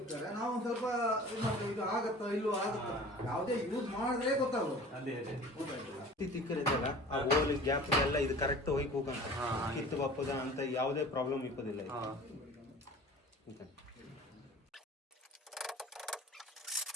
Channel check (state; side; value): normal; both; correlation 0.43